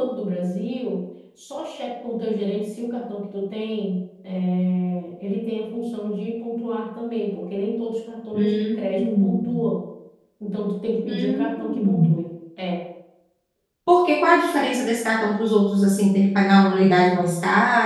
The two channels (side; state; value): both; identical; correlation 1.00